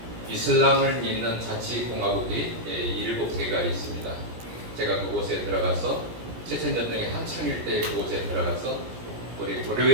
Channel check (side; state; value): left; late; 17 ms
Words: 이슬람을 믿는 자치공화국이 7개가 있습니다. 제가 그곳에 들어가서 체첸 전쟁의 한창일 때 그곳에 들어가서 우리